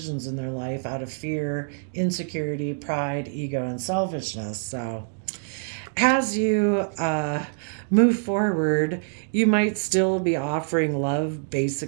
in their life out of fear, insecurity, pride, ego, and selfishness. So, as you move forward, you might still be offering love,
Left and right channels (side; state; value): left; silent; 62 dB below the other